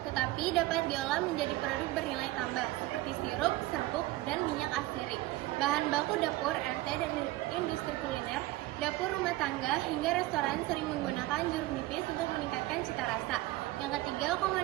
tetapi dapat diolah menjadi produk bernilai tambah seperti sirup, serbuk, dan minyak asirik. Bahan baku dapur, RT, dan industri kuliner, dapur rumah tangga, hingga restoran sering menggunakan jeruk nipis untuk meningkatkan cita rasa. Yang ketiga,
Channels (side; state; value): left; quieter; 18.1 dB